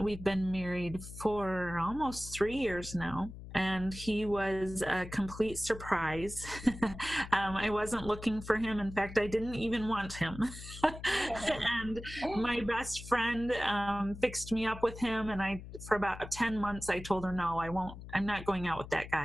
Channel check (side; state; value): left; noise; hum, 13 dB below the sound